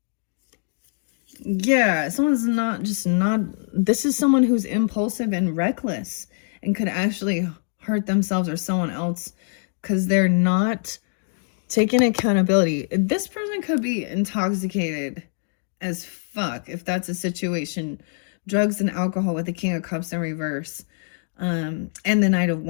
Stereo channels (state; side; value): silent; right; digital silence